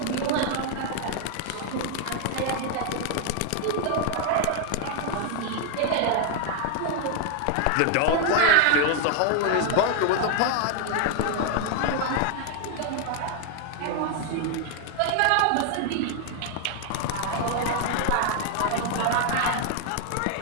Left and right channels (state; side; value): different; both; correlation 0.00